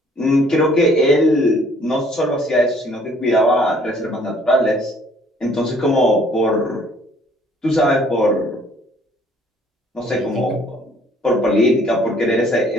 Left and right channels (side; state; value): both; normal; correlation 0.60